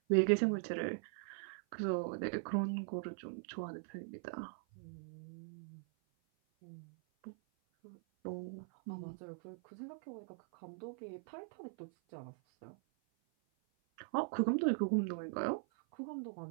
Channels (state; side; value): silent; left; 50 dB below the other